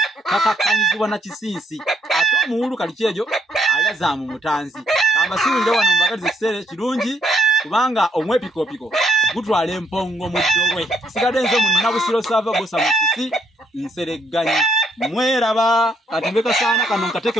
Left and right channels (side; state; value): both; normal; correlation 0.71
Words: kakakkanyizibwa na kisinsi. Ate omuwulu kaliki ejo ayaza mu mutanzi. Ambasiwulire wano mbagaliza ekiseera kirungi kubanga omwepikoopiko gutwala empongo mu ddobwe. Sigadde nze mu Nabusiro Sava Bosa Musisi Nseregganyi. Mweraba katembe Kasaana kano nkateke